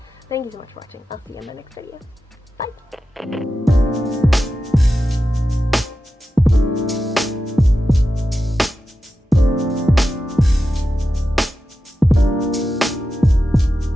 thank you so much for watching. I'll see you in my next video. Bye!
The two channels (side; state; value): both; normal; correlation 0.91